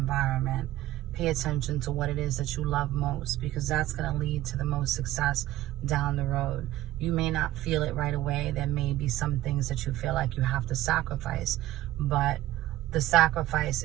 Pay attention to what it is that you love most, because that's going to lead to the most success down the road. You may not feel it right away. There may be some things that you feel like you have to sacrifice, but the sacrifice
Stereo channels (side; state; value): left; quieter; 15.1 dB